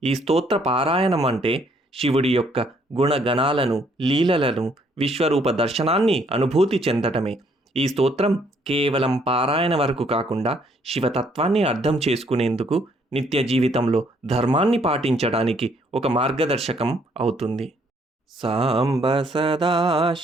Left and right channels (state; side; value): normal; both; correlation 0.66